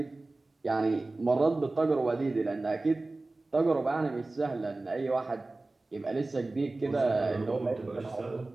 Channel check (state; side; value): quieter; left; 3.1 dB